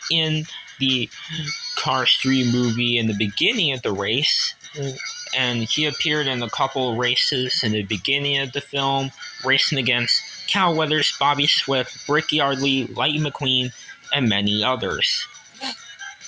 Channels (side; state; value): both; identical; correlation 1.00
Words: in the Cars 3 movie in the beginning of the race, and he appeared in a couple races in the beginning of the film, racing against Cal Weathers, Bobby Swift, Rick Yardley, Lightning McQueen, and many others.